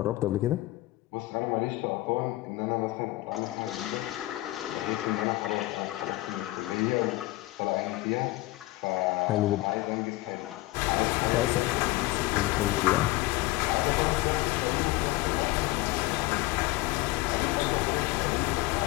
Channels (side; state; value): right; quieter; 19.4 dB